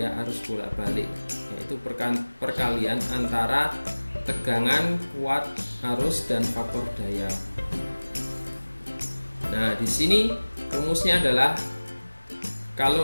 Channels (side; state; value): both; inverted; correlation -1.00